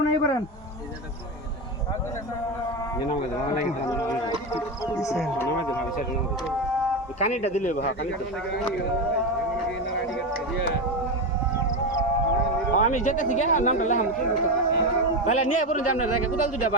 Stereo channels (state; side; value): normal; both; correlation 0.14